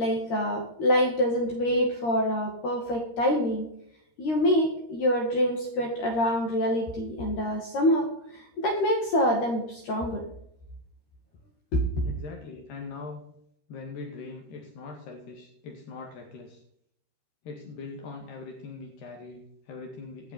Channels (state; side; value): late; right; 13 ms